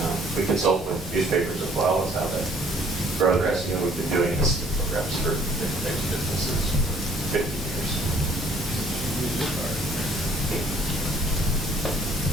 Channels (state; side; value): normal; both; correlation 0.59